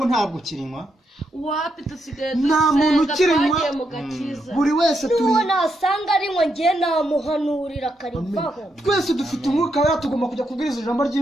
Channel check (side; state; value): both; normal; correlation 0.81